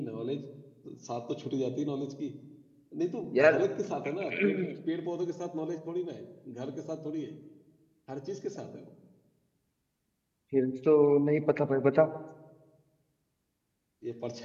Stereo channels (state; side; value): identical; both; correlation 1.00